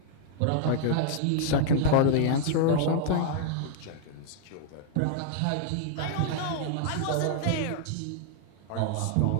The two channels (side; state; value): both; different; correlation -0.01